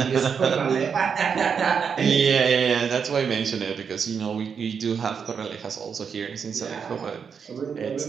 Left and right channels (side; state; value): left; quieter; 6.5 dB